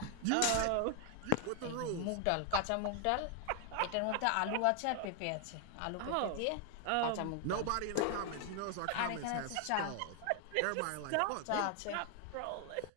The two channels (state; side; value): different; both; correlation 0.00